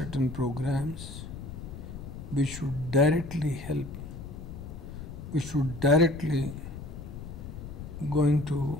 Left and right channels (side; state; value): left; noise; rumble, 10 dB below the sound